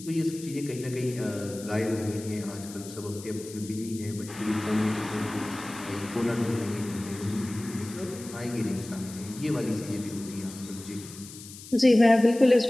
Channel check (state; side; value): noise; left; hiss, 15 dB below the sound